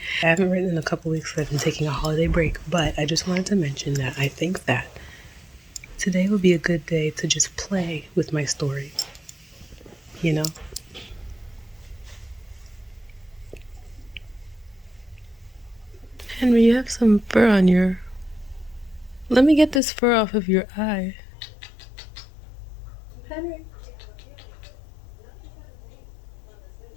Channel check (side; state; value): right; drops out; at 19.8 s